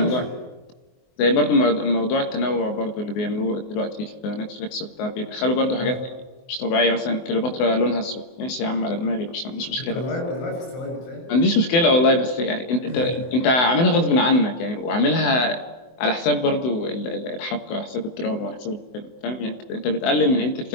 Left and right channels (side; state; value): right; late; 24 ms